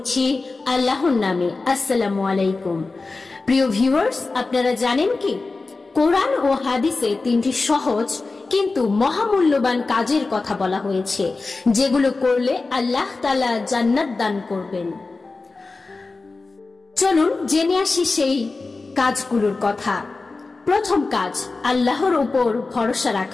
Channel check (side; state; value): right; quieter; 3.7 dB